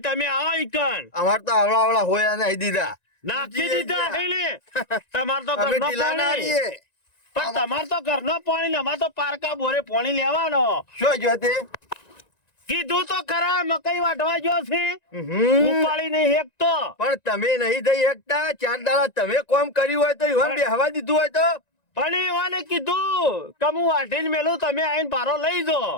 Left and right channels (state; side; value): late; right; 1.9 ms